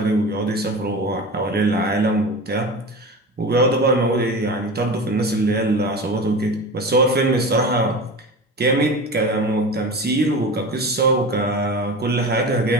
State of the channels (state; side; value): normal; both; correlation 0.30